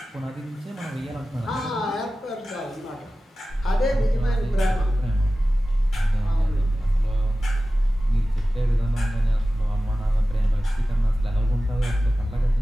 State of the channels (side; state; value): both; normal; correlation 0.95